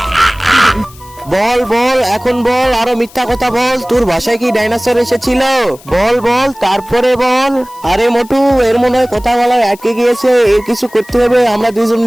বল বল, এখন বল, আরো মিথ্যা কথা বল। তোর বাসায় কি ডাইনোসর এসেছিল? বল বল, তারপরে বল। আরে মোটু, এর মনে হয় কথা বলা আটকে গিয়েছে। এর কিছু করতে হবে, আমরা দুজন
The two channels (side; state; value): left; noise; hiss, 23 dB below the sound